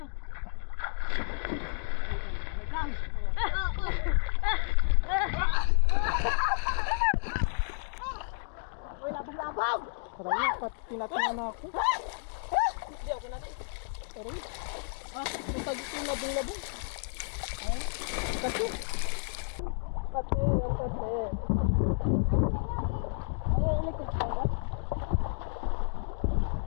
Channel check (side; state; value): right; silent; digital silence